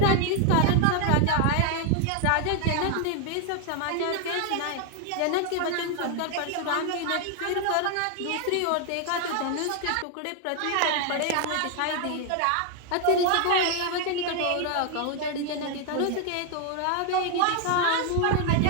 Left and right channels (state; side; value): different; both; correlation 0.00